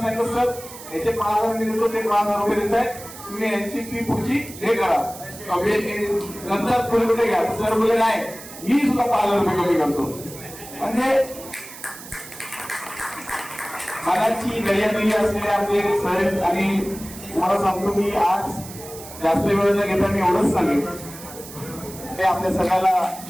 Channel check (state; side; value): noise; right; hiss, 15 dB below the sound